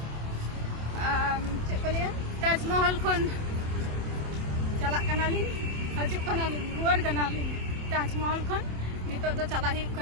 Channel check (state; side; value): late; left; 27 ms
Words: चेक को लिया ताजमहल खन चला कना ली हजु कना ली रुआर कना ली ताजमहल खन नितो दो चला ही